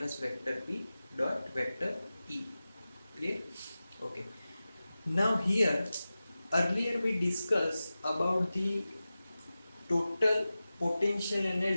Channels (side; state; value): both; inverted; correlation -0.95